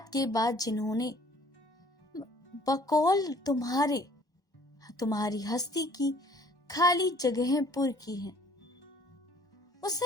के बाद जिन्होंने बकौल तुम्हारी हस्ती की खाली जगहें पुर की हैं।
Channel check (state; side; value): late; right; 1.1 ms